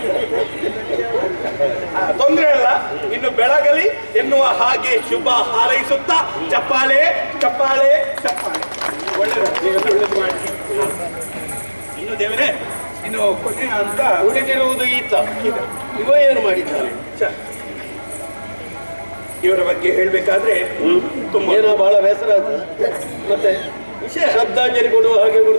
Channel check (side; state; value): both; inverted; correlation -1.00